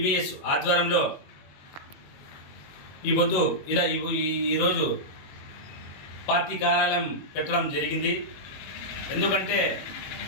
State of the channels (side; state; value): right; late; 21 ms